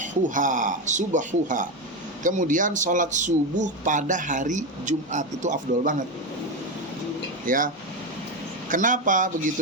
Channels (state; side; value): normal; both; correlation 0.13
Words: kemudian sholat subuh pada hari Jumat, itu afdol banget ya. Kenapa